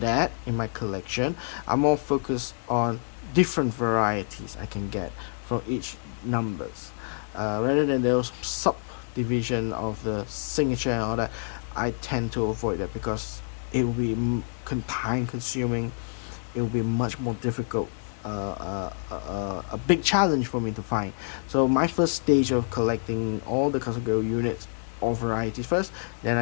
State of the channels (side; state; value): right; silent; digital silence